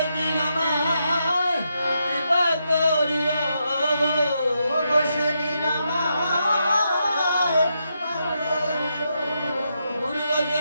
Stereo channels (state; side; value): inverted; both; correlation -0.82